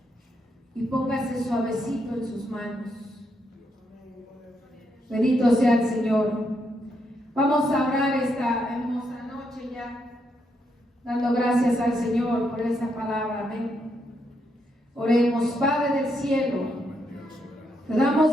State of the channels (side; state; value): both; normal; correlation 0.79